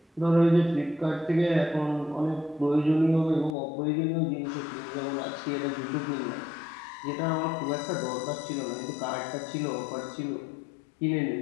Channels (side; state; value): right; drops out; at 3.6 s